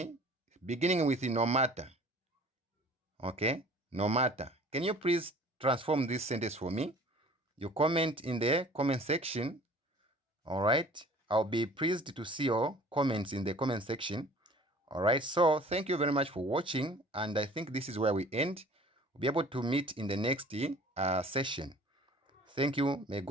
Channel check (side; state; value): both; normal; correlation 0.48